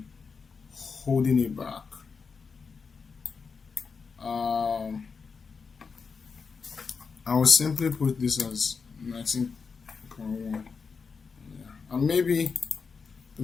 holding it back. I will simply put this as 19.1. Yeah. And maybe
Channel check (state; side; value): quieter; right; 5.3 dB